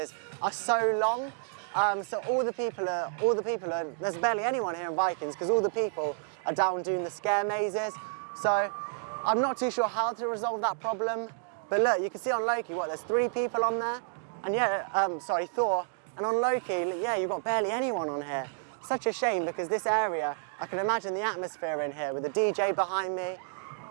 are so long. So all the people are, there's barely anyone here in Vikings because all the people are down doing the scare mazes. So I'm not too sure how to resolve that problem. But look, you can see on Loki, there's 3 people on there. And yeah, Thor. And on Loki, yeah, you've got barely anyone on here. Such a shame because this area, I can imagine the atmosphere in here with the DJ behind me.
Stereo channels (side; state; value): left; silent; digital silence